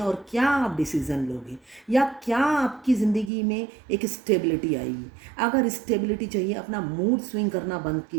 क्या आप डिसीज़न लोगे, या क्या आपकी ज़िंदगी में एक स्टेबिलिटी आएगी? अगर स्टेबिलिटी चाहिए, अपना मूड स्विंग करना बंद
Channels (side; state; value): left; drops out; at 3.3 s